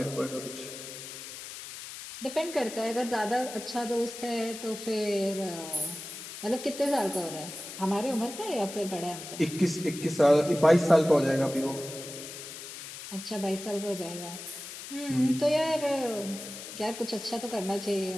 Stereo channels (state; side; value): noise; left; hiss, 11 dB below the sound